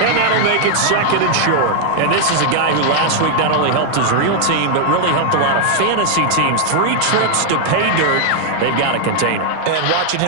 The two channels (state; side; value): different; both; correlation 0.00